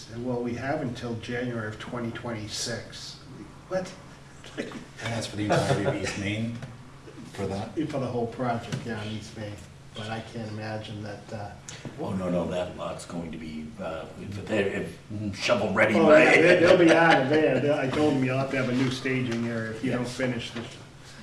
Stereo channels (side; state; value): both; identical; correlation 1.00